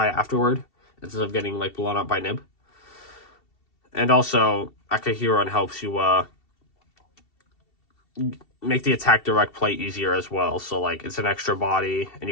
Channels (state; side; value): late; right; 2.7 ms